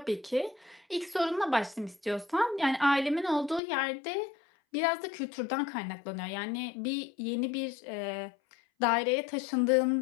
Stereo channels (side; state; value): right; drops out; at 3.6 s